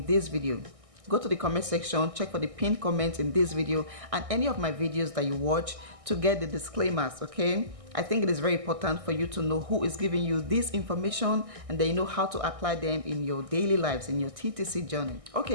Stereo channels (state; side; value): late; left; 1.6 ms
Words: this video. Go to the comment section, check for the pinned comment in this video and any of my videos that you watch to get the disclaimers, okay? I think it is very important for you to know who is giving you this information, and then you know how to apply them in your daily lives, in your TTC journey.